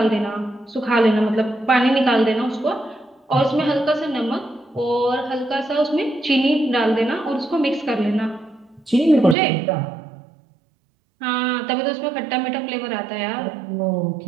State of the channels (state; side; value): drops out; left; at 9.3 s